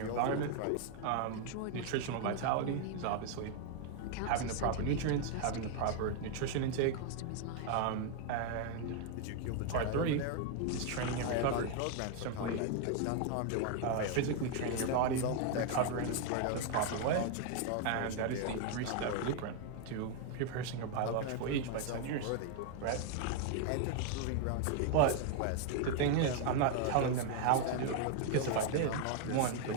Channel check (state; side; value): different; both; correlation 0.00